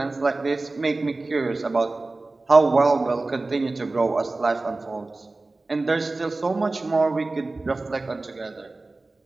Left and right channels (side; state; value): left; quieter; 3.2 dB